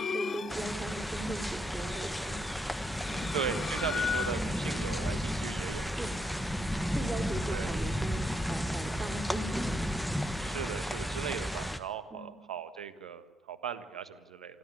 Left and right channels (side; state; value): both; normal; correlation 0.79